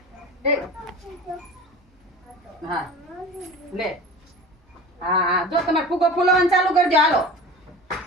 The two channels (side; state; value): both; normal; correlation 0.37